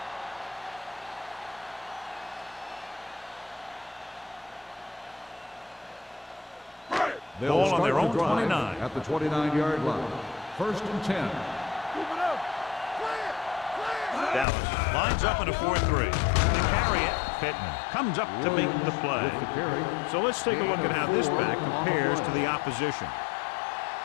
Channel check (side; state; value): right; drops out; at 14.5 s